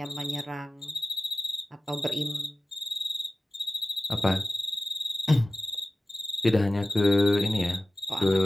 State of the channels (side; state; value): both; normal; correlation 0.94